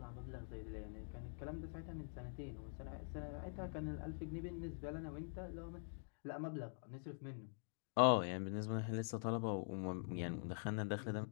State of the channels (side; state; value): right; silent; digital silence